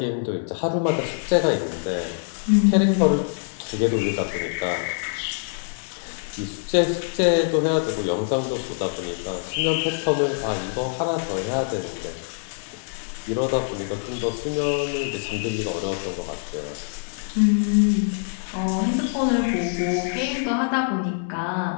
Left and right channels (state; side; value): silent; right; 62 dB below the other